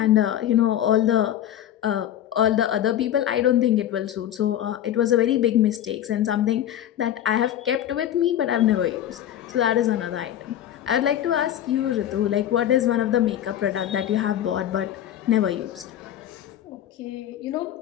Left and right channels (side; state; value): right; quieter; 11.2 dB